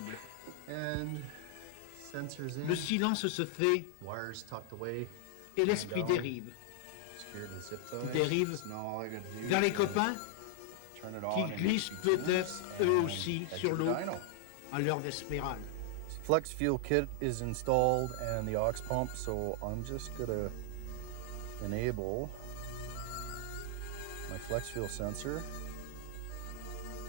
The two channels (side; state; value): both; different; correlation 0.00